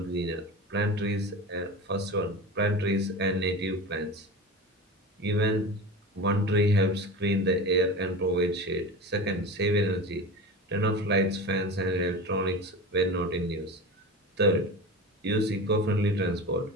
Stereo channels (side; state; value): both; normal; correlation 0.30